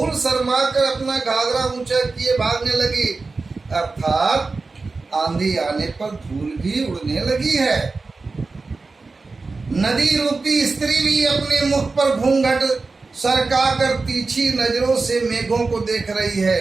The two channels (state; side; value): quieter; left; 3.9 dB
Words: शर्मा कर अपना घाघरा ऊंचा किए भागने लगी, अर्थात आंधी आने पर धूल भी उड़ने लगी है। नदी रूपी स्त्री भी अपने मुख पर घूंघट सरका कर तीखी नजरों से मेघों को देख रही है।